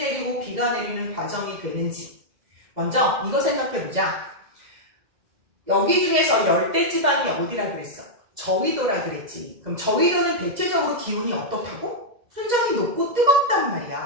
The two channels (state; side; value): late; left; 2.0 ms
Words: 비가 내리는 과정이 되는지 먼저 이거 생각해보자. 여기 중에서 열대지방이 어디라 그랬어? 저위도라 그랬지. 그럼 저위도는 대체적으로 기온이 어떻다고? 순정이 높고 뜨겁단